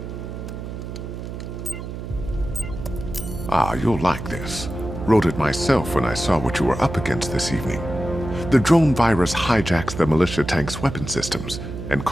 Ah, you'll like this. Wrote it myself when I saw what you were up against this evening. The drone virus hijacks the militia tank's weapon systems and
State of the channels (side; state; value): right; noise; hum, 8 dB below the sound